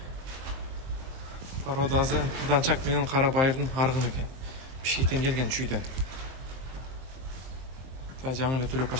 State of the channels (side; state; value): left; late; 23 ms